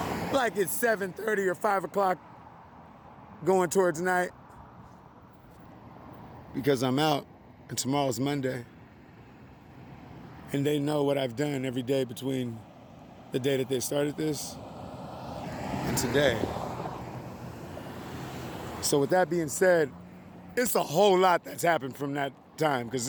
like it's 7:30 or 5 o'clock going towards night? Because I'm out and tomorrow's Monday. And they know what I've done every day between the day that they started this and today. So with that being said, it's a whole lot that's happened from that time, because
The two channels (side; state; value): both; identical; correlation 1.00